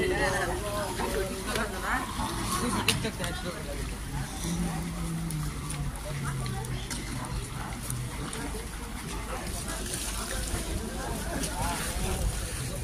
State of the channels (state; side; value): identical; both; correlation 1.00